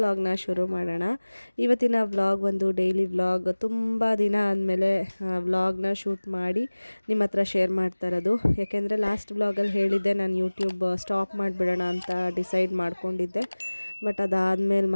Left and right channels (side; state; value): both; inverted; correlation -1.00